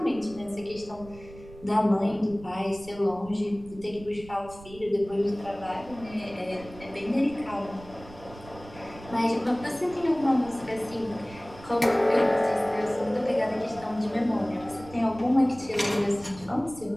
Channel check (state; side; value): noise; right; rumble, 18 dB below the sound